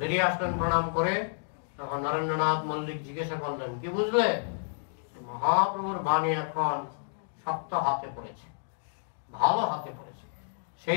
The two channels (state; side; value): silent; right; digital silence